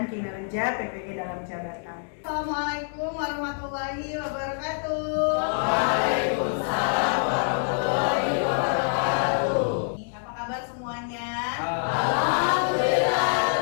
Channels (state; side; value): silent; right; 61 dB below the other